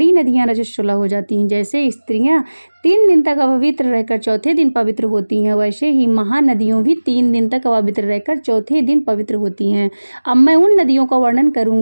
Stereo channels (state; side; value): inverted; both; correlation -1.00